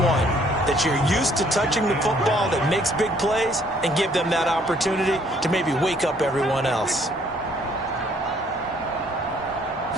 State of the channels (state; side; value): normal; both; correlation 0.63